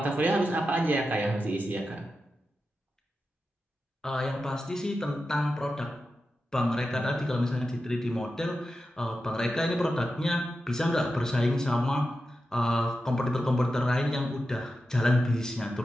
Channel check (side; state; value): both; normal; correlation 0.91